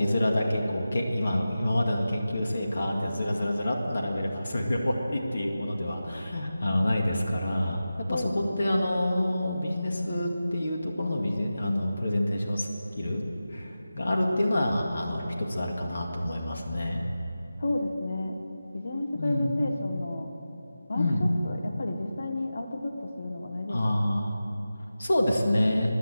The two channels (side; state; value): both; inverted; correlation -0.94